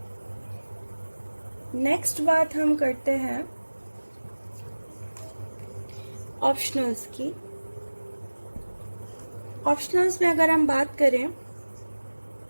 Next बात हम करते हैं ऑप्शनल्स की। ऑप्शनल्स में अगर हम बात करें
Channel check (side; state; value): both; inverted; correlation -1.00